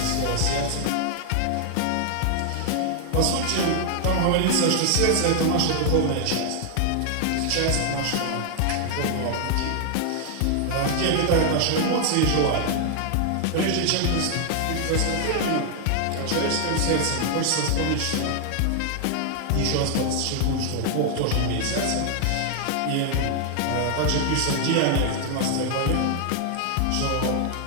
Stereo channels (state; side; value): different; both; correlation 0.00